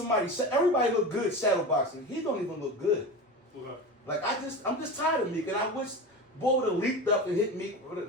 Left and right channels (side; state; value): both; normal; correlation 0.27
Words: everybody look good shadow boxing. He don't even look good. Okay. Like, I'm just tired of Meek, and I wish Bo would have leaped up and hit Meek with a